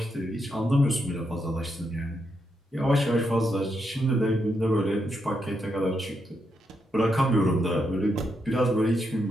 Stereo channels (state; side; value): normal; both; correlation 0.81